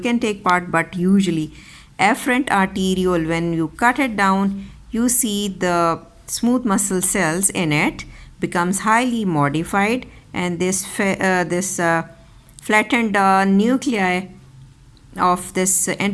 take part, but usually afferent arteriole, when you cut it down, you see the smooth muscle cells in it becomes highly modified, and this flattened nuclei of this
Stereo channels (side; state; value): both; identical; correlation 1.00